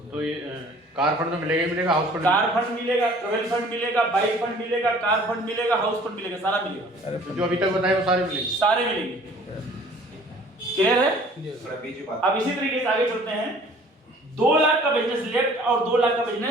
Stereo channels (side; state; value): both; normal; correlation 0.52